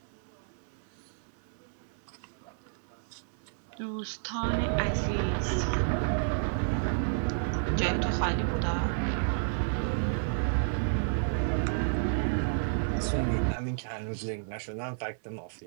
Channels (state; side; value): silent; left; 57 dB below the other